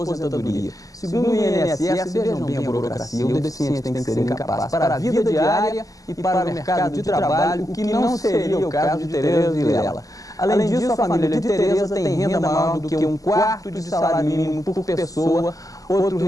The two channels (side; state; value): right; late; 0.17 ms